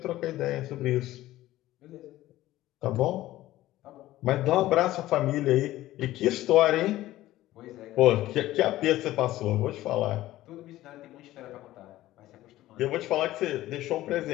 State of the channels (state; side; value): quieter; right; 15.5 dB